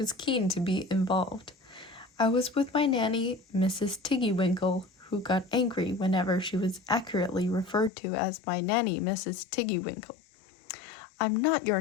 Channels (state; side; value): drops out; right; at 7.9 s